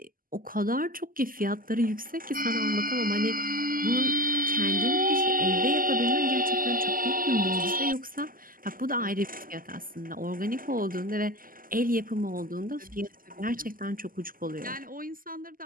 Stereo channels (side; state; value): left; late; 0.41 ms